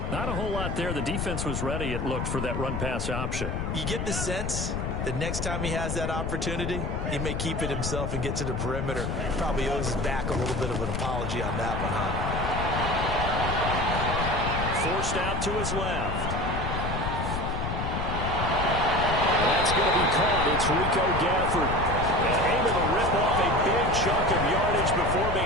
Not a whole lot there. The defense was ready, it looked, for that run-pass option. You get the sense that next time he has that opportunity, he may keep it himself and get to the perimeter. Probably owes his back a little bit of an apology on that one, huh? Forced out to his left. And that's going to be caught. It's Rico Gafford. And able to rip off a big chunk of yardage before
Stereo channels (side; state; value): left; noise; rumble, 2 dB below the sound